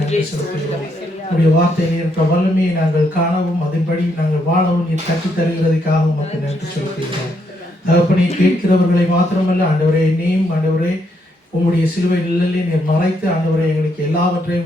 செலுத்துகிறோம். உடைய வார்த்தையில் இருக்கிற வல்லமையை நாங்கள் காணவும் அதன்படி நாங்கள் வாழவும் நீர் கற்றுத் தருகிறதுக்காக உமக்கு நன்றி செலுத்துகிறோம். தகப்பனை கேட்கிறவர்களை மாத்திரமல்ல ஆண்டவரே, என்னையும் ஆண்டவரே உம்முடைய சிலுவை நிழலிலே நீர் மறைத்து ஆண்டவரை எங்களுக்கு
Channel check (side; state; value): both; normal; correlation 0.76